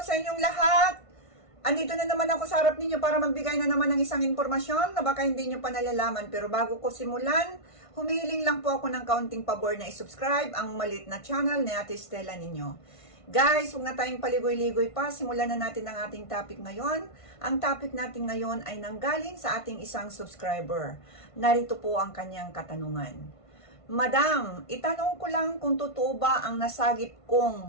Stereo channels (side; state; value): right; late; 1.5 ms